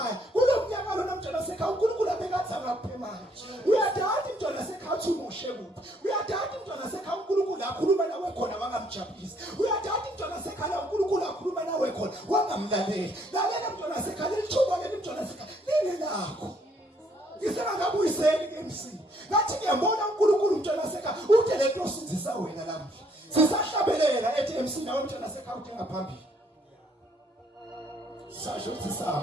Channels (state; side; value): normal; both; correlation 0.67